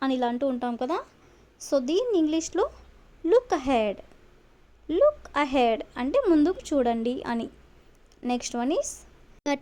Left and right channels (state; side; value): identical; both; correlation 1.00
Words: అని ఇలా అంటూ ఉంటాం కదా. సో దీన్ని ఇంగ్లీష్లో లుక్ అహెడ్, లుక్ అహెడ్ అంటే ముందుకు చూడండి అని. నెక్స్ట్ వన్ ఈస్